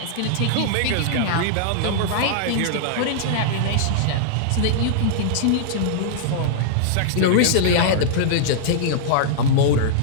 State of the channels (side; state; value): both; different; correlation -0.02